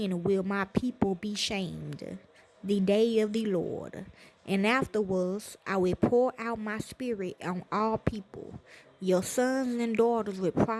will my people be shamed. The day of the Lord. And afterwards I will pour out my spirit on all people. Your sons and daughters will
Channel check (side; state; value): both; identical; correlation 1.00